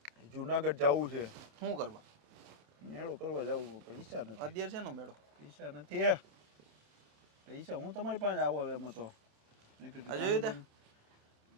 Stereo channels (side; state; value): left; late; 27 ms